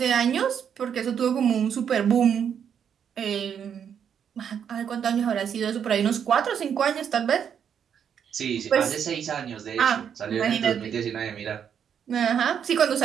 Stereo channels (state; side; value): quieter; left; 8.1 dB